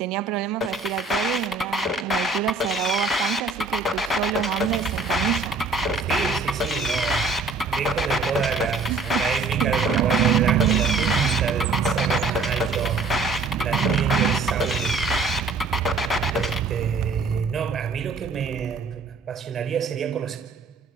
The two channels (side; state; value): left; quieter; 4.1 dB